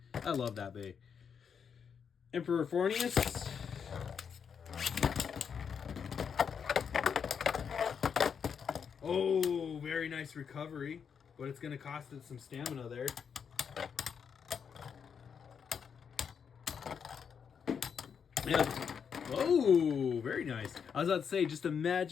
I love that bay. Emperor Fornius. Oh, very nice recovery. But it's going to cost it some stamina there. Yeah. Oh, very nice. I was about to say, just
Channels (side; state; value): right; quieter; 6.9 dB